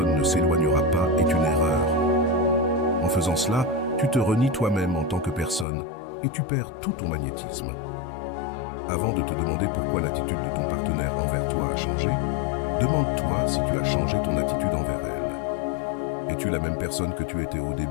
ne s'éloignera pas est une erreur. En faisant cela, tu te renies toi-même en tant que personne et tu perds tout ton magnétisme. Avant de te demander pourquoi l'attitude de ton partenaire envers toi a changé, demande-toi si tu as changé ton attitude envers elle. Es-tu la même personne que tu étais au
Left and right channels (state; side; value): drops out; right; at 5.7 s